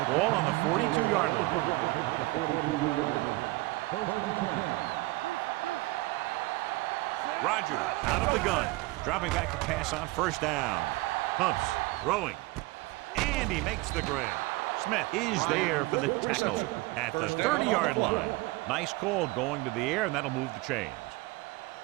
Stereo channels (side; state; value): left; quieter; 21.6 dB